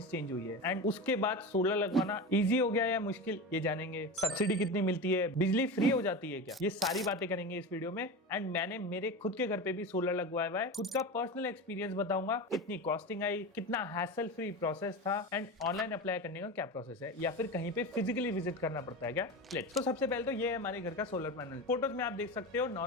चेंज हुई है एंड उसके बाद सोलर लगवाना इजी हो गया या मुश्किल, ये जानेंगे। सब्सिडी कितनी मिलती है, बिजली फ्री हो जाती है क्या, ये सारी बातें करेंगे इस वीडियो में। एंड मैंने मेरे खुद के घर पे भी सोलर लगवाया हुआ है, खुद का पर्सनल एक्सपीरियंस बताऊंगा, कितनी कॉस्टिंग आई, कितना हैसल फ्री प्रोसेस था एंड ऑनलाइन अप्लाई करने का क्या प्रोसेस है, या फिर कहीं पे फिजिकली विजिट करना पड़ता है क्या। लेट्स। तो सबसे पहले तो ये है हमारे घर का सोलर पैनल। फोटोज में आप देख सकते हो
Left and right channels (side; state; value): both; normal; correlation 0.25